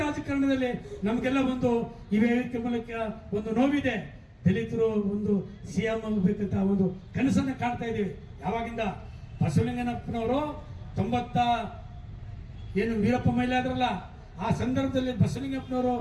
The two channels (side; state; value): both; identical; correlation 1.00